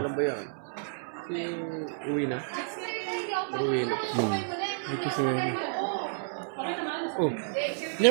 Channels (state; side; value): silent; left; 57 dB below the other